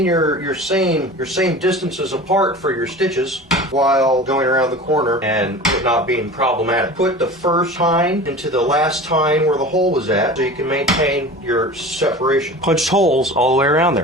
your same distances apart for your stitches while going around the corner and it not being problematic. Put the first tine into the last tine where the hole was at so you can maintain your separation. Punched holes all the way around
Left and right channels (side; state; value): both; normal; correlation 0.36